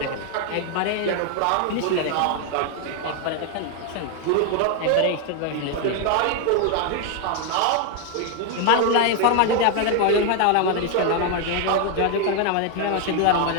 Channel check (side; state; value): both; different; correlation 0.00